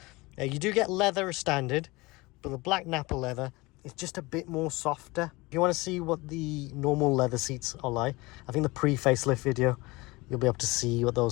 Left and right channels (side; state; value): right; quieter; 22.8 dB